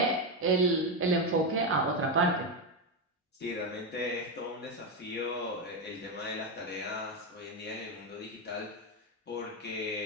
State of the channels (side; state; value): both; normal; correlation 0.09